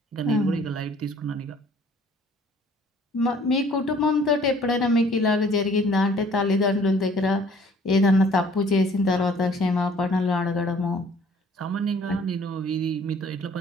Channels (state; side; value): normal; both; correlation 0.55